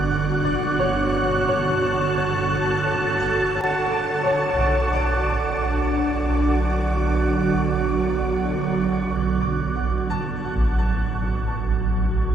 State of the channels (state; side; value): normal; both; correlation 0.76